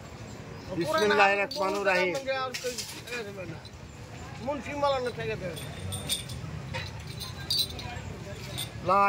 বিসমিল্লাহির রহমানির রহিম। মুন্সি মালানা থেকে দে। লা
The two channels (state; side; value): identical; both; correlation 1.00